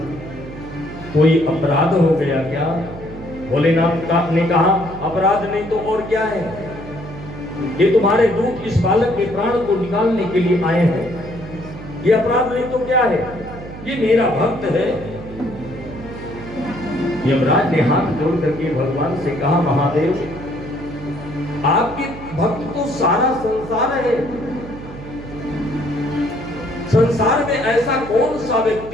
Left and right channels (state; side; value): noise; right; hum, 13 dB below the sound